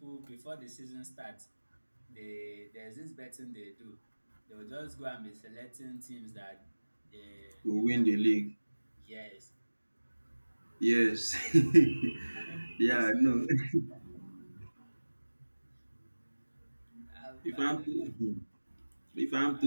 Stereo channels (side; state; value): both; inverted; correlation -1.00